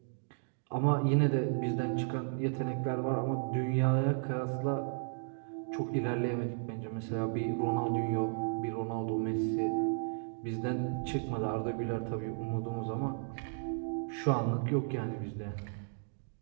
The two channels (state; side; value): silent; left; digital silence